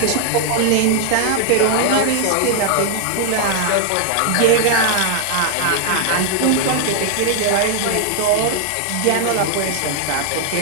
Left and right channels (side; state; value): both; different; correlation 0.00